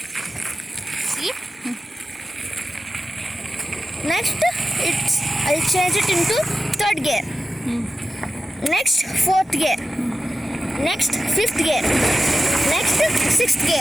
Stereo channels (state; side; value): normal; both; correlation 0.93